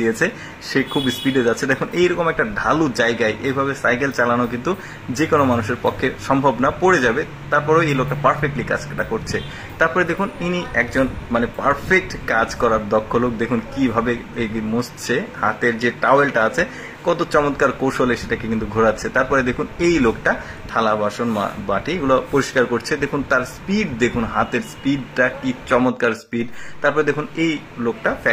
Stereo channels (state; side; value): identical; both; correlation 1.00